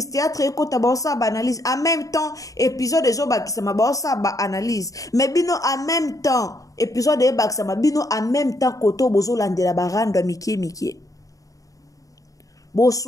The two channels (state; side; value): late; right; 0.16 ms